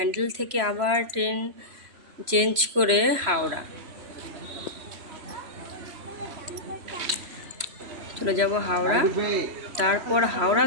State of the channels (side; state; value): left; late; 3.1 ms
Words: থেকে আবার ট্রেন চেঞ্জ করে হাওড়া চলে যাব হাওড়া। তারপর হাওড়া